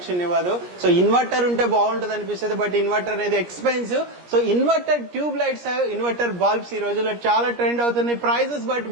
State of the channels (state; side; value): late; left; 17 ms